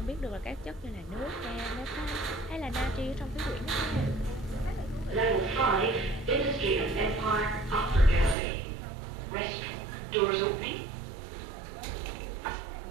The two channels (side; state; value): left; drops out; at 8.3 s